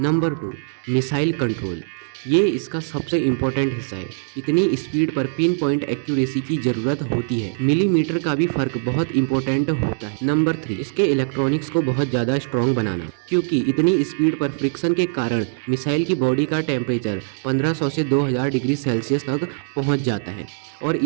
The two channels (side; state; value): left; silent; 63 dB below the other